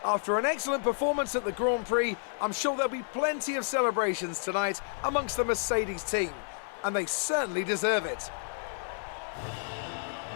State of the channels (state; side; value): silent; right; digital silence